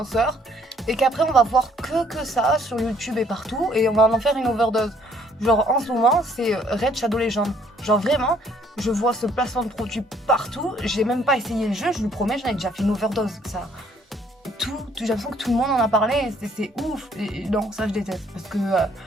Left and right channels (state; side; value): normal; both; correlation 0.63